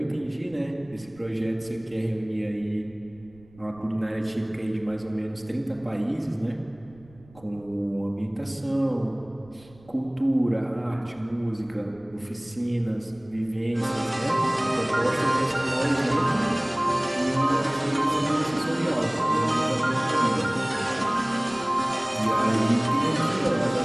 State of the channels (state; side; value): noise; right; rumble, 25 dB below the sound